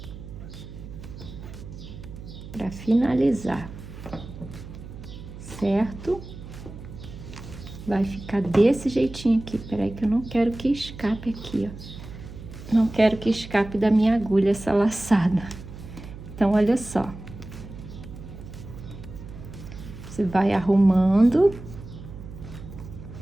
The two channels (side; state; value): right; noise; hum, 13 dB below the sound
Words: Pra finalizar, certo? Vai ficar desse jeitinho aqui, peraí que eu não quero que escape aqui, ó. Não quero que escape da minha agulha essa laçada. Então, olha só. Você vai arrumando